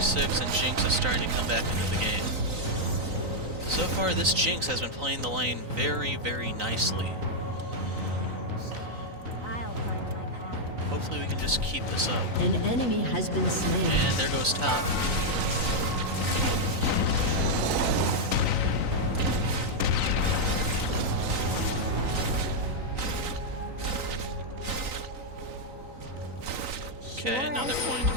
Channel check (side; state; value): left; late; 3.9 ms